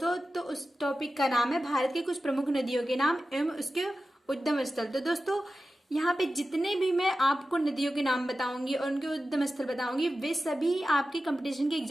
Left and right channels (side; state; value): both; normal; correlation 0.93